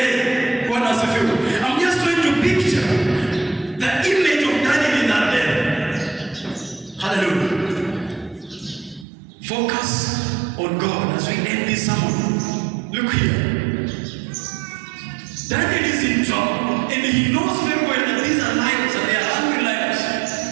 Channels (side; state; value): left; drops out; at 9.1 s